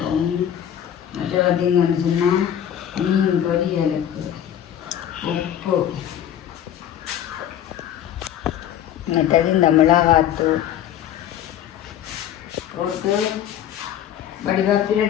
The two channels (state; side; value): quieter; right; 10.3 dB